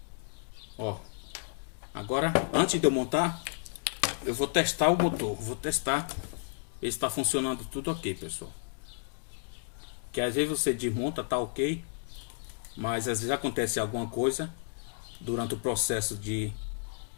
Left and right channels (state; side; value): silent; right; digital silence